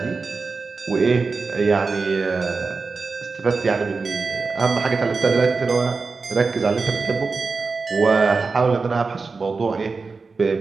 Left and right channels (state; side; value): quieter; left; 4.3 dB